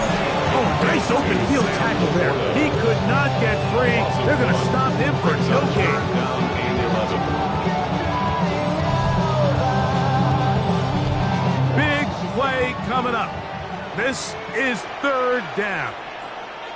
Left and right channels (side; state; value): both; identical; correlation 1.00